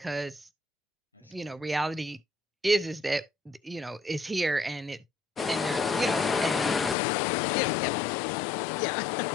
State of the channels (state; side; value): drops out; right; at 7.0 s